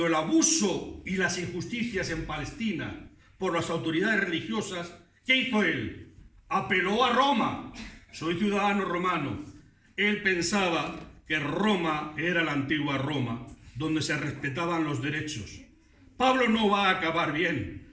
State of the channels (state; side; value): identical; both; correlation 1.00